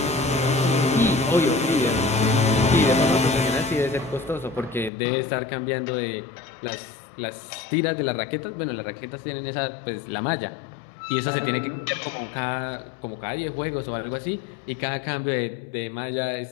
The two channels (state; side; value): drops out; right; at 4.9 s